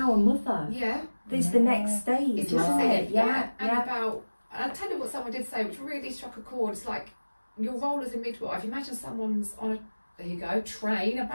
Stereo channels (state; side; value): inverted; both; correlation -1.00